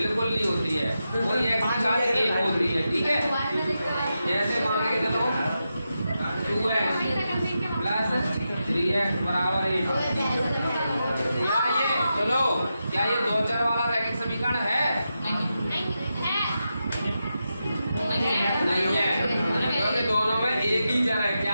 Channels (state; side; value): inverted; both; correlation -0.88